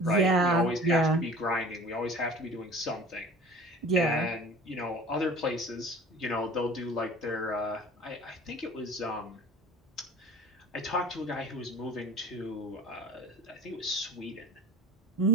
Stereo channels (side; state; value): both; normal; correlation 0.43